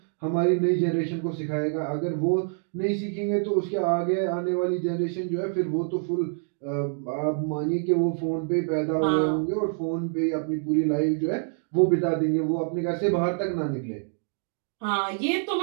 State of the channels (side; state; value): left; silent; 61 dB below the other